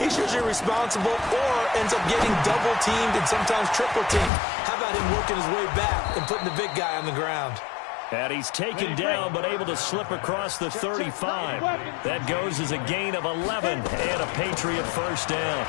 usually responsible or ends up getting double-teamed and sometimes triple-teamed. How about him working his way back and putting the big guy on the ground? And he's taken down but able to slip across the 35. That goes as a gain of 11 and a Patriot first down.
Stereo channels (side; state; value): right; drops out; at 4.3 s